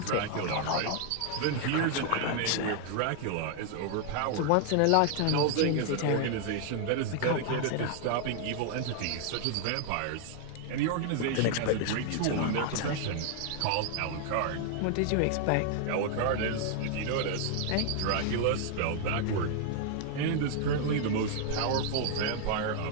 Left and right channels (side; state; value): both; different; correlation 0.00